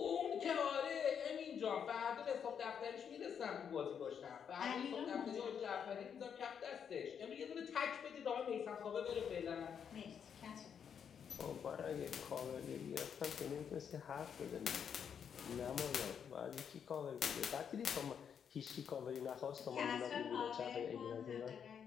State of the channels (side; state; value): right; quieter; 7.6 dB